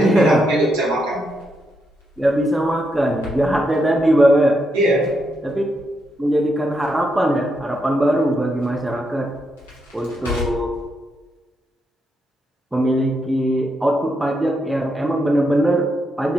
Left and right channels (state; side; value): normal; both; correlation 0.81